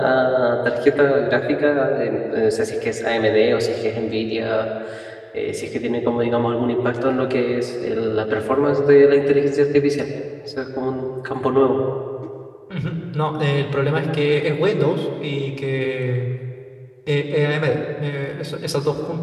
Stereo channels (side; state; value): both; identical; correlation 1.00